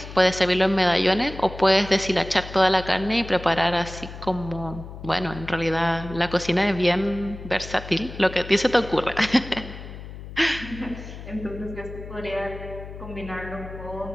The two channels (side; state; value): left; noise; hum, 12 dB below the sound